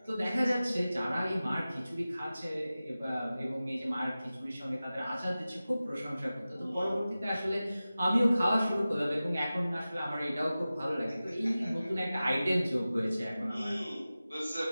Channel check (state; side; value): inverted; both; correlation -0.96